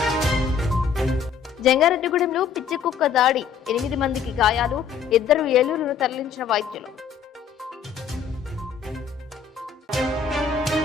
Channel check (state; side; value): quieter; right; 6.6 dB